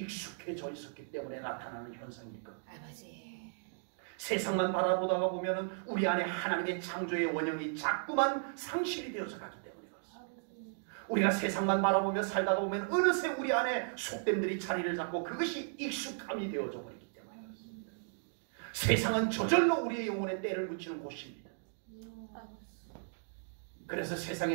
있었기 때문에 나타나는 현상일 겁니다. 아버지. 세상만 바라보다가 보면은 우리 안에 하나님의 창조의 원형이 자꾸만 상실이 되어서 가기 때문에 그렇습니다. 우리가 세상만 바라보며 살다가 보면 어느새 우리 안에 속됨들이 자리를 잡고 그것이 익숙함이 되어져 버리기 때문에 그렇습니다. 세상은 저절로 우리의 영혼에 때를 묻히는 곳입니다. 그래서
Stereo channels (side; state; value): left; silent; digital silence